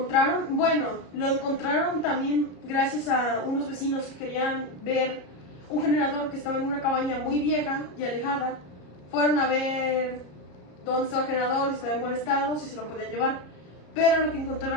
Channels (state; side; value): late; right; 33 ms